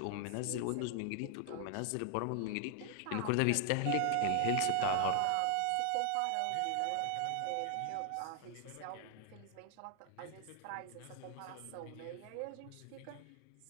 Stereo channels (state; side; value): different; both; correlation 0.00